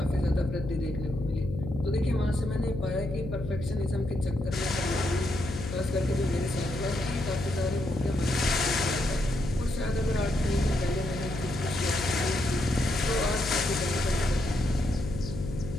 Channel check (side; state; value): left; noise; hum, 7 dB below the sound